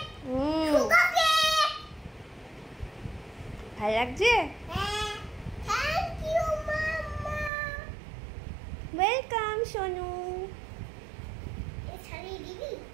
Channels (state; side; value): drops out; left; at 7.5 s